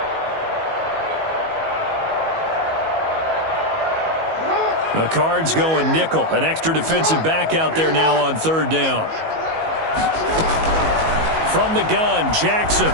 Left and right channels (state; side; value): late; left; 19 ms